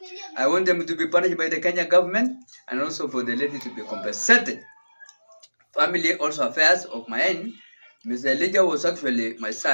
I want them to be punished by the Kenya government and also for the lady to be compensated. Family also affairs of my end. Mr. Elijah was actually my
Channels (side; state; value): both; inverted; correlation -1.00